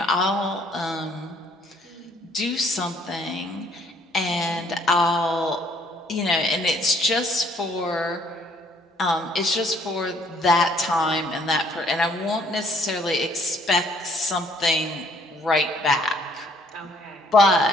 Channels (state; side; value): normal; both; correlation 0.63